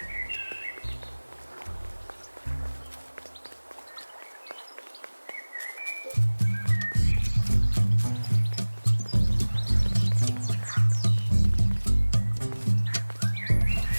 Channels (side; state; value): both; inverted; correlation -1.00